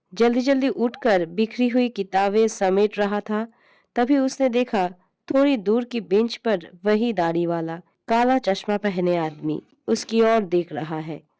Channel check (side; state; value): both; identical; correlation 1.00